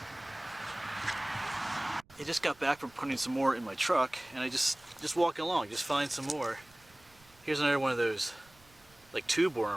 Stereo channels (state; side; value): noise; right; rumble, 28 dB below the sound